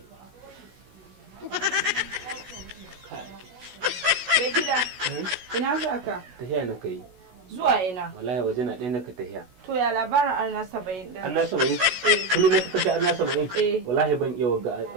Mai gida. Ina za ka? Tahiya na kai. Zuwa ina. Wallahi waje na ɗaya naka tahiya. To ya labarin auna 70 din. Anna 70? Kullum na kashe Anna 70? Eh. Wallahi ban iya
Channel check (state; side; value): late; left; 16 ms